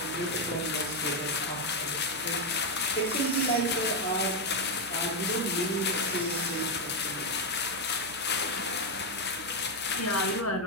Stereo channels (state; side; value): noise; right; hum, 20 dB below the sound